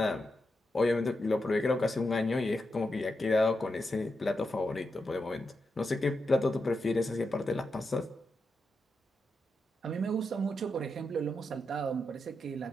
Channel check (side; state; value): both; normal; correlation 0.86